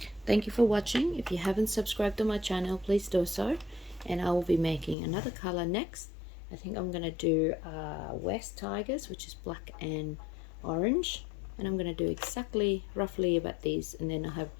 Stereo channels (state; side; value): drops out; right; at 5.0 s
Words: Thank you for watching. If you haven't subscribed to my channel, please do so, and I will be making another color next. I think I'm gonna do West Tigers, which is black and orange, and I'm gonna do exactly roughly about these, and then I have